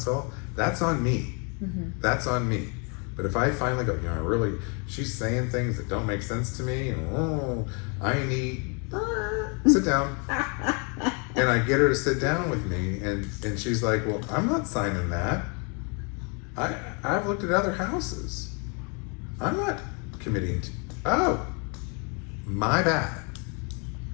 that's on me. That's on me. But if I finally go, really, she's saying things that don't make sense to me, and I need, sit down. And I get her to sit down with me, and she's like, well, I'm not signing that. I've looked at other houses. I'm not committing to, oh, my bad.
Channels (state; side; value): quieter; right; 35.2 dB